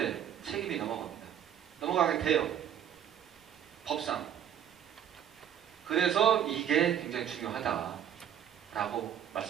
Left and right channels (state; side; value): quieter; left; 9.7 dB